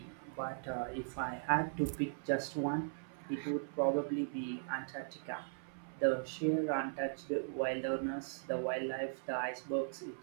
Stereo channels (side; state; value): left; silent; 52 dB below the other